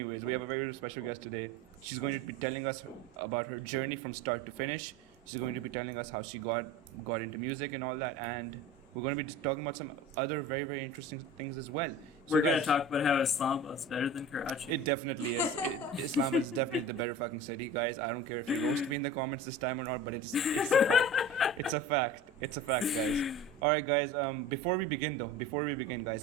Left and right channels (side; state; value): both; normal; correlation 0.35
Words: have a very special guest today. She's going to be telling us about her journey from start to finish. She's going to be telling us how she got into music and all that, and we're going to be talking about some other very very interesting things as well. So We're gonna guys, talk about how Islamabad is better than Karachi. it definitely is. Islamabad is definitely the better fucking city, guys. I don't care if you roast me in the comments this time or not, but it's a fact. It's a fact. It's a fact, guys. All right, guys. Before we begin,